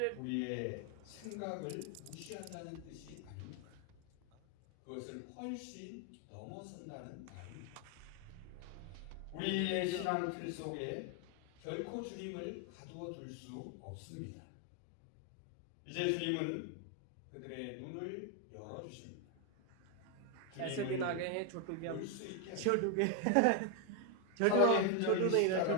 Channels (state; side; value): different; both; correlation 0.01